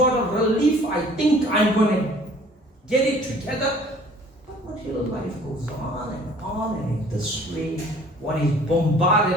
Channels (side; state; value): both; normal; correlation 0.52